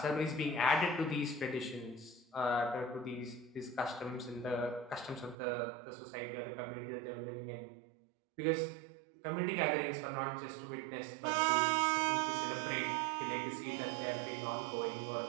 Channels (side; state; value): left; drops out; at 5.4 s